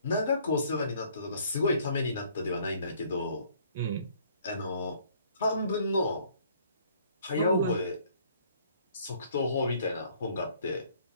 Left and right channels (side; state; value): both; inverted; correlation -0.60